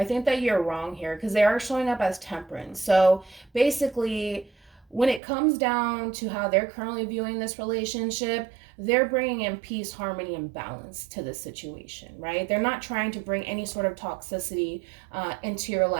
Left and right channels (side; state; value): left; drops out; at 5.2 s